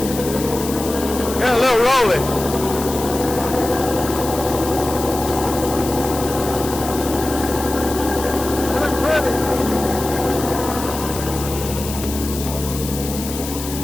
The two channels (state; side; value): noise; left; hiss, 9 dB below the sound